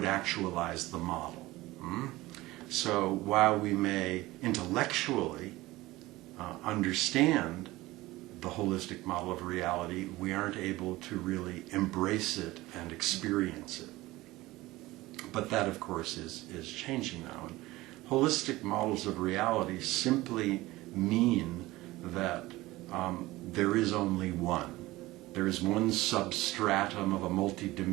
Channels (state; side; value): quieter; left; 18.8 dB